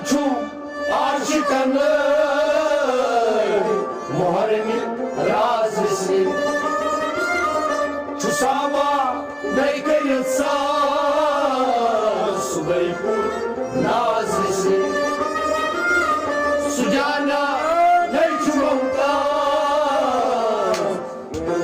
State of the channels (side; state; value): both; identical; correlation 1.00